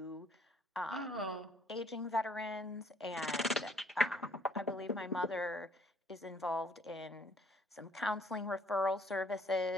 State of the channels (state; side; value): normal; both; correlation 0.62